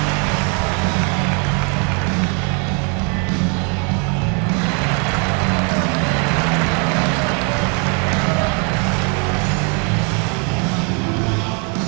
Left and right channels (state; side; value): quieter; left; 36.2 dB